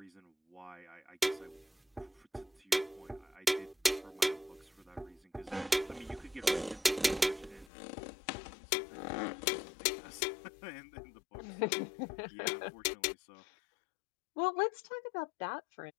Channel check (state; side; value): drops out; right; at 7.7 s